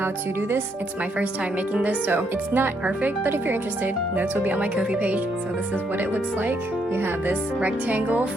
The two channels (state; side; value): normal; both; correlation 0.74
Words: to do this. It's my first time making this, so it's not perfect, but if you're interested, notes will be on my Ko-fi page. So this is what it looks like. You have this rectangle